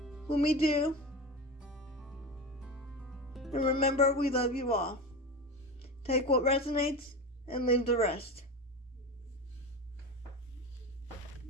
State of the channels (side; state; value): both; normal; correlation 0.24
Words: when we do. And remember, we love you all. Take what resonates and leave the rest.